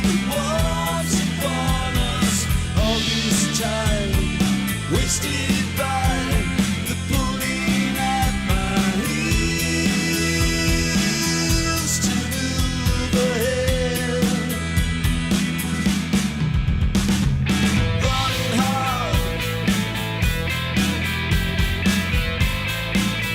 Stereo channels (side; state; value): both; identical; correlation 1.00